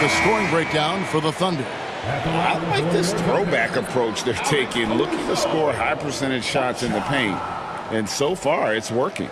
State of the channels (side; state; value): both; identical; correlation 1.00